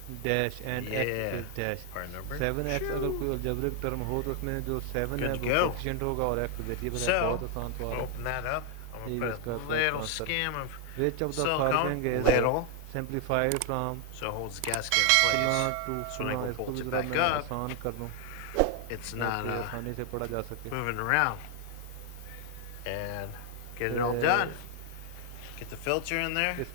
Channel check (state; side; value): different; both; correlation 0.00